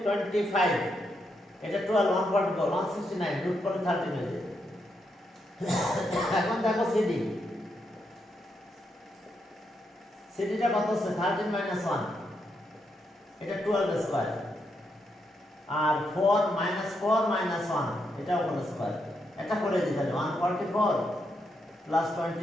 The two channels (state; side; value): normal; both; correlation 0.81